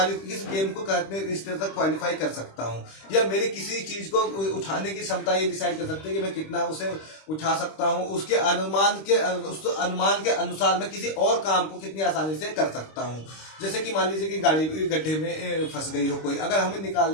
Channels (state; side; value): late; right; 26 ms